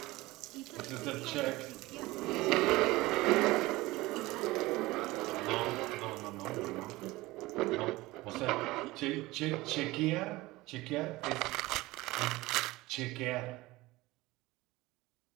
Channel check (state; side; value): quieter; left; 19.8 dB